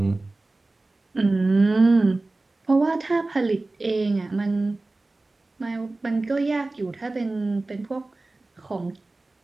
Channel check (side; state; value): left; quieter; 3.1 dB